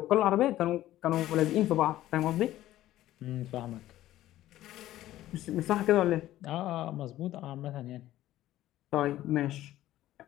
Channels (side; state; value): right; quieter; 14.3 dB